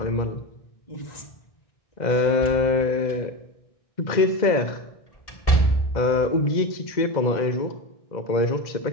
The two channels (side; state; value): right; late; 2.0 ms